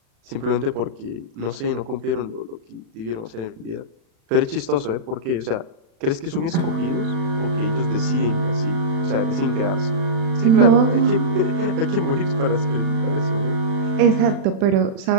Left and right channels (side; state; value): left; late; 36 ms